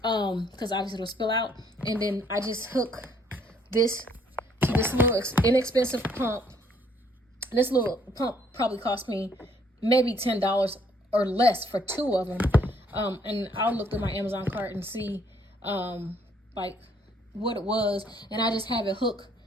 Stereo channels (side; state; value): both; normal; correlation 0.66